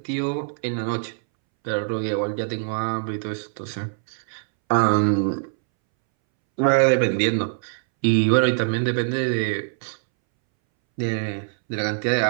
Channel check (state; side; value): silent; left; 63 dB below the other